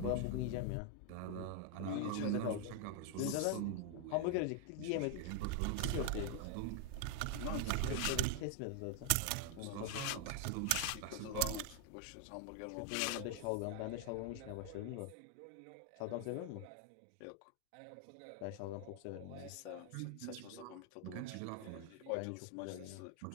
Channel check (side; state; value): both; different; correlation 0.00